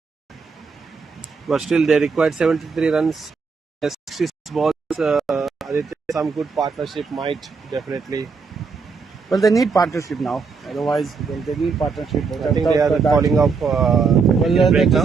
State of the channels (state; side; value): quieter; left; 5.1 dB